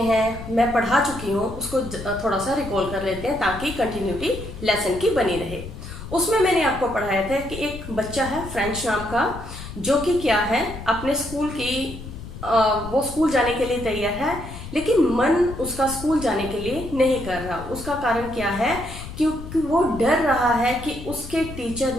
हैं, मैं पढ़ा चुकी हूँ, उसको थोड़ा सा रिकॉल कर लेते हैं ताकि कंटिन्यूटी लेसन की बनी रहे। उसमें मैंने आपको पढ़ाया था कि एक बच्चा है फ्रेंच नाम का, जो कि क्या है अपने स्कूल की वो स्कूल जाने के लिए तैयार है, लेकिन मन उसका स्कूल जाने के लिए नहीं कर रहा। उसका कारण क्या है? क्योंकि वो डर रहा है कि उसके टीचर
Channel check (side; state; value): left; noise; rumble, 11 dB below the sound